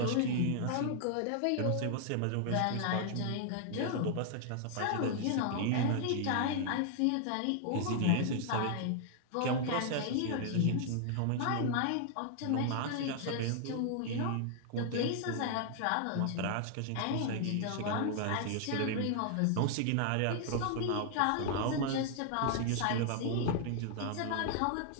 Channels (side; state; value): both; different; correlation 0.00